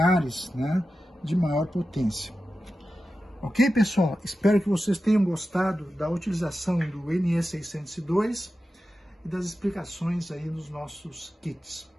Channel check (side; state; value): both; normal; correlation 0.92